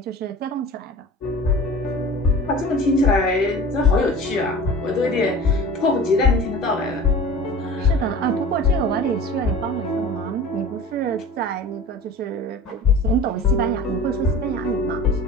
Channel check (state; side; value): normal; both; correlation 0.38